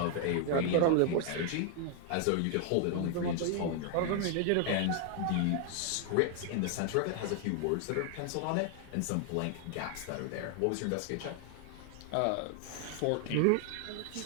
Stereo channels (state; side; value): different; both; correlation 0.00